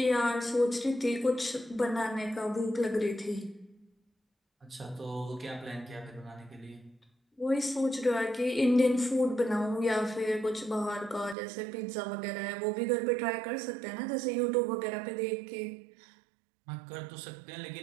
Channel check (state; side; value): drops out; left; at 11.4 s